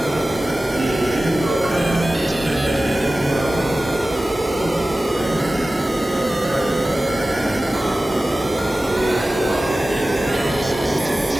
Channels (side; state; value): both; normal; correlation 0.96